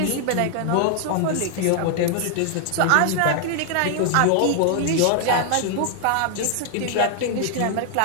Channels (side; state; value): both; different; correlation 0.00